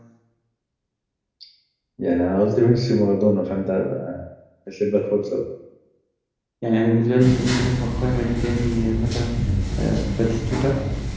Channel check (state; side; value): identical; both; correlation 1.00